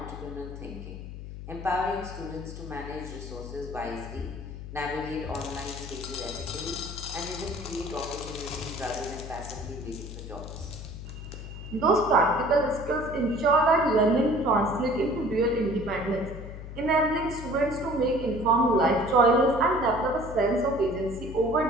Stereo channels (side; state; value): left; noise; hum, 10 dB below the sound